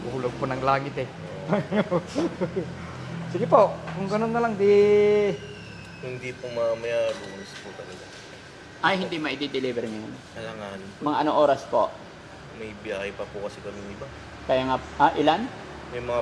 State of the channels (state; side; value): identical; both; correlation 1.00